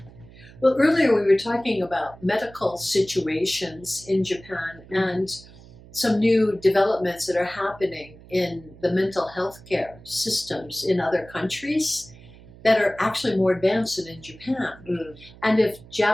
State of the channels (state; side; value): noise; right; hum, 21 dB below the sound